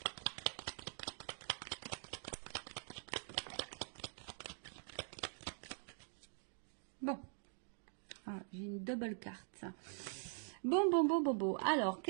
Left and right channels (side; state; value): left; silent; digital silence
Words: Bon, ah, j'ai une double carte. Bon. Alors,